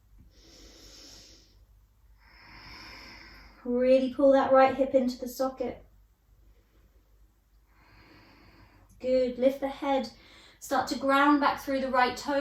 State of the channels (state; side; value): identical; both; correlation 1.00